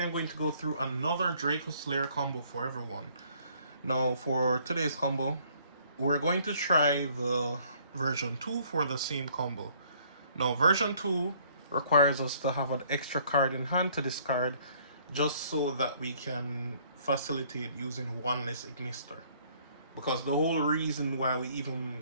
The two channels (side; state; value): both; inverted; correlation -0.61